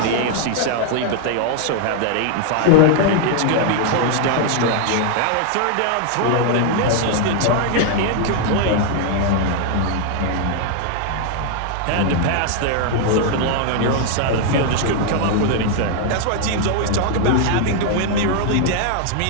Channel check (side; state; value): both; different; correlation 0.00